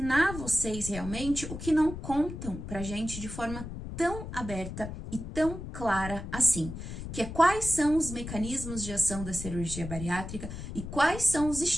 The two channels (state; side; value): noise; left; rumble, 8 dB below the sound